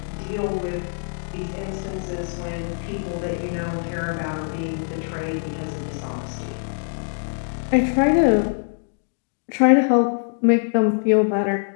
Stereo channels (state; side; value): silent; right; digital silence